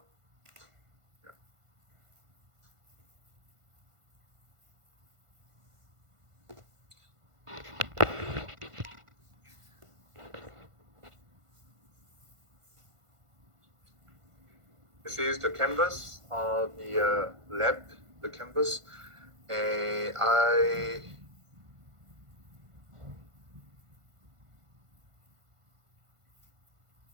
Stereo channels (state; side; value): late; left; 1.5 ms